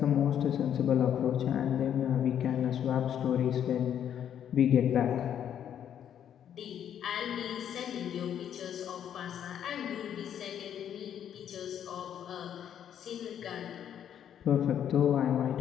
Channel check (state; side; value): quieter; right; 9.5 dB